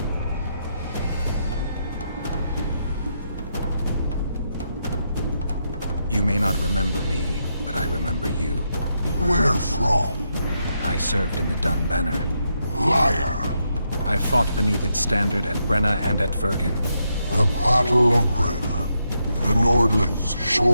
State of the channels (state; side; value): inverted; both; correlation -0.81